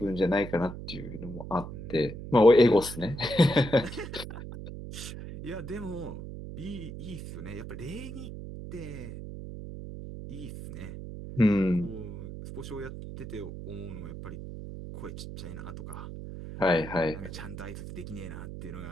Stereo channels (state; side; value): noise; right; hum, 10 dB below the sound